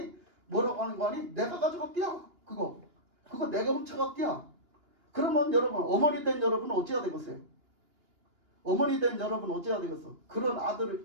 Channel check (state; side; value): late; left; 2.8 ms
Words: 아니? 내가 가져갔디야. 그거 내가 훔쳐갔디야. 그러면 여러분, 어머니 된 여러분은 어찌해야 되겠어요? 어머니 된 여러분 어찌해야 되겠어? 그런